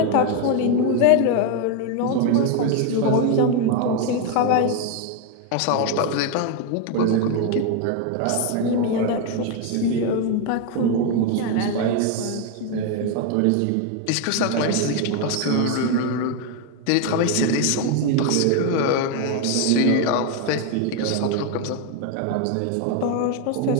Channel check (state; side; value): different; both; correlation 0.01